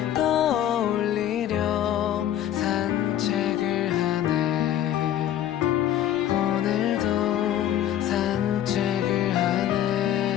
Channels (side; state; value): right; quieter; 11.4 dB